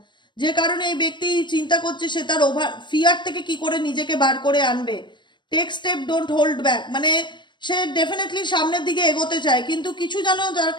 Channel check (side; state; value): right; late; 0.22 ms